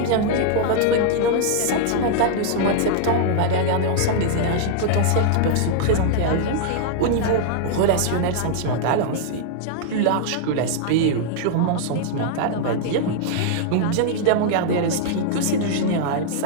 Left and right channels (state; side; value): different; both; correlation -0.01